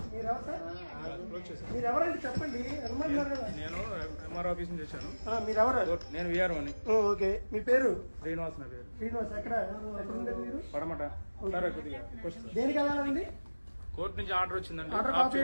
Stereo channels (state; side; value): inverted; both; correlation -1.00